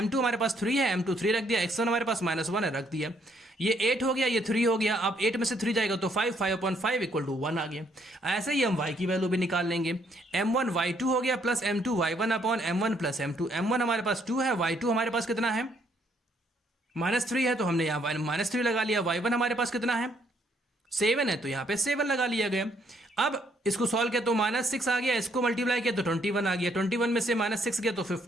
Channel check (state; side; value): normal; both; correlation 0.69